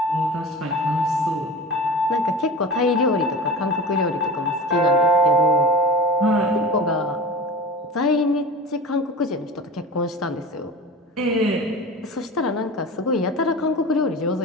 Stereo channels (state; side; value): normal; both; correlation 0.33